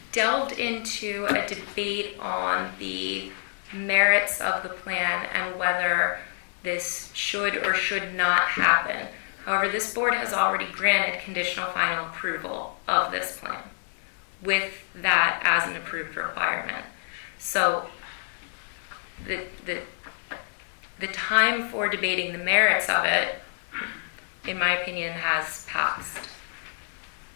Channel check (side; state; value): right; silent; digital silence